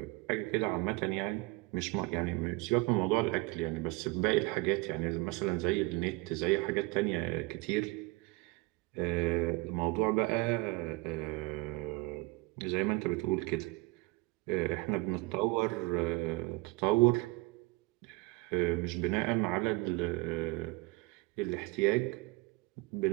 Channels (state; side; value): quieter; left; 24.2 dB